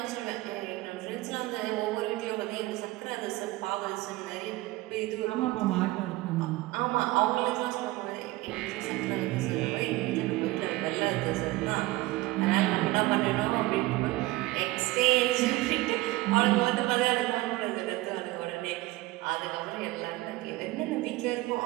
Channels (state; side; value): quieter; left; 19.2 dB